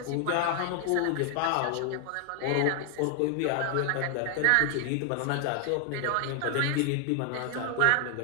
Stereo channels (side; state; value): both; different; correlation 0.00